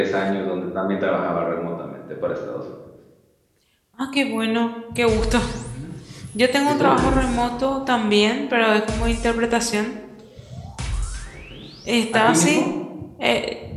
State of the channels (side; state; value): both; identical; correlation 1.00